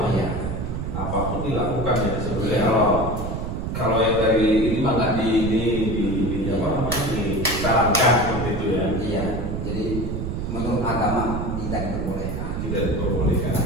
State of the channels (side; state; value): right; noise; rumble, 3 dB below the sound